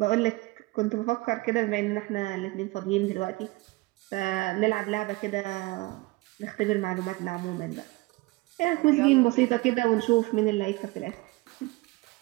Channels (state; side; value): quieter; left; 22.5 dB